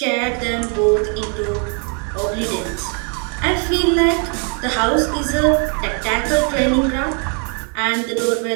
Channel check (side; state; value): left; quieter; 39.0 dB